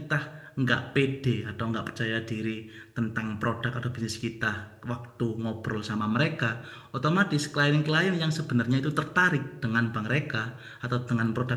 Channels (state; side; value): identical; both; correlation 1.00